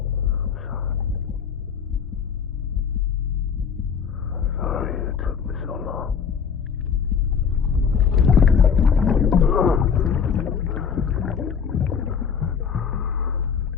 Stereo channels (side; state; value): right; quieter; 6.8 dB